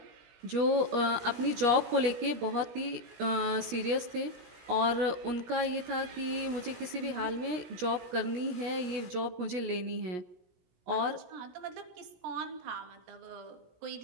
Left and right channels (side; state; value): left; late; 17 ms